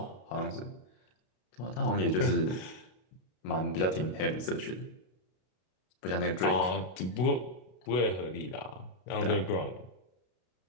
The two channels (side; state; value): right; late; 32 ms